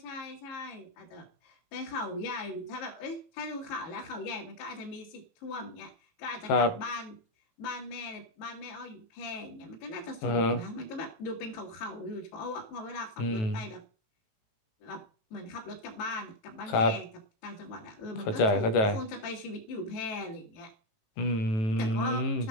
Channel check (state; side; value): late; right; 18 ms